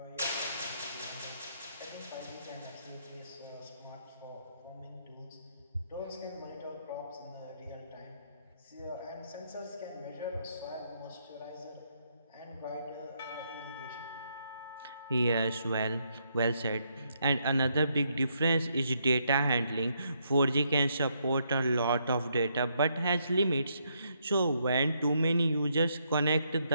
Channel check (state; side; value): inverted; both; correlation -0.76